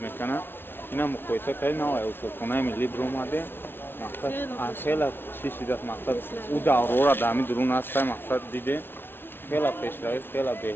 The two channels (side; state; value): right; late; 0.11 ms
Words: اینا مقایسه کردن نه اصولخانه ملی بر اومده مقصد خیلی چی شده است مقصد او دوره را در همین درون است مقصد دیده خیلی پیشروی خیلی